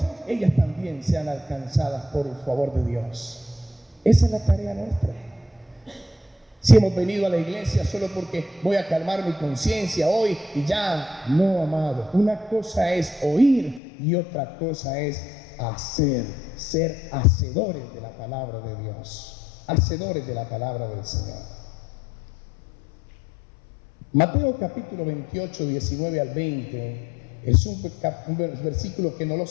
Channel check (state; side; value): drops out; right; at 13.8 s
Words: ellas también sean alcanzadas por el favor de Dios. Esa es la tarea nuestra. Si hemos venido a la iglesia solo porque voy a calmar mi conciencia hoy y ya, no, amado. Una cosa es oír y otra cosa es hacer, ser hacedores de la palabra de Dios, hacedores de la palabra del Señor. Mateo capítulo 28, 19 al 20 es un versículo que no lo